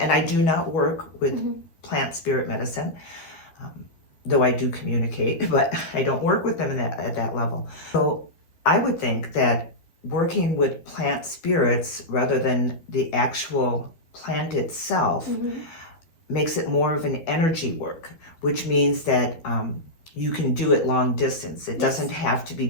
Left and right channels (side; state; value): right; late; 12 ms